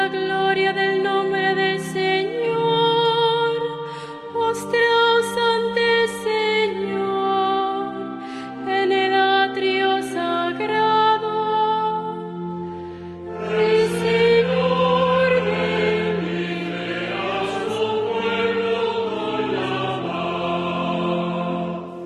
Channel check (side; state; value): both; identical; correlation 1.00